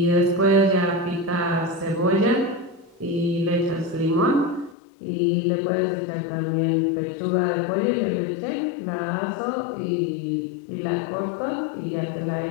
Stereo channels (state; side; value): drops out; right; at 4.8 s